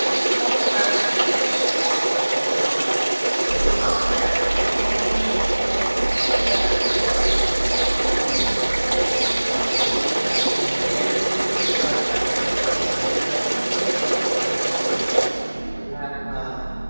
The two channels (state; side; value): inverted; both; correlation -1.00